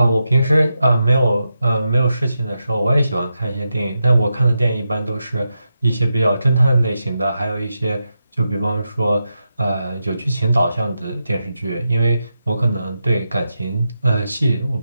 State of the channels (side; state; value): both; inverted; correlation -0.88